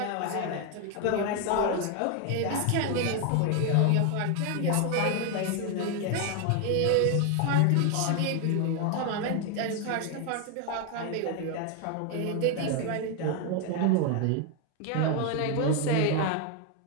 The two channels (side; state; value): both; different; correlation 0.01